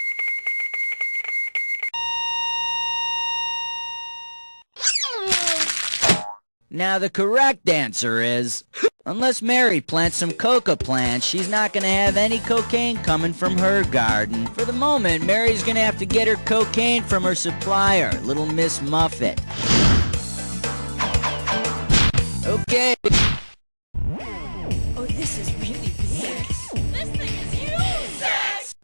Now the correct answer is, unless Mary plants some coca plants, she's not going to have any cocaine coming from her garden. For the moment, Mary's going to have to get her cocaine from her supplier, Little Miss Muffet. Okay. Oh, this is really big. This thing is huge.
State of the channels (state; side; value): inverted; both; correlation -1.00